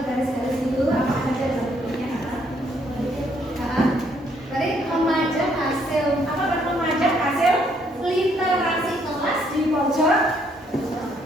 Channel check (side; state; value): both; normal; correlation 0.69